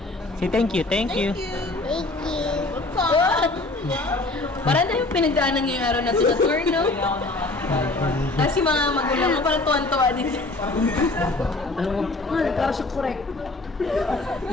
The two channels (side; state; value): right; quieter; 3.0 dB